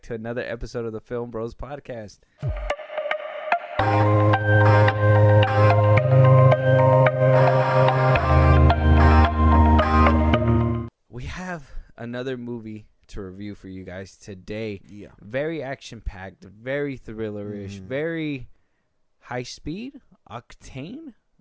to another episode of the FilmBros podcast. We have another movie to review for you guys today. Yeah. Very action-packed, very thrillerish, very high speed, octane.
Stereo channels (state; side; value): identical; both; correlation 1.00